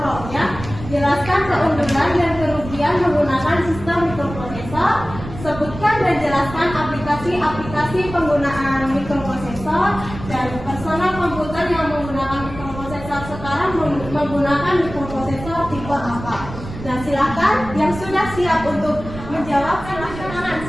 Jelaskan keunggulan dan kerugian menggunakan sistem mikroprosesor. Sebutkan dan jelaskan aplikasi-aplikasi penggunaan mikroprosesor dan personal komputer yang menggunakan mikroprosesor sekarang menggunakan mikroprosesor tipe apa. Nah, silakan yang sudah siap untuk menjawab, silakan.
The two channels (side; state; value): right; noise; rumble, 12 dB below the sound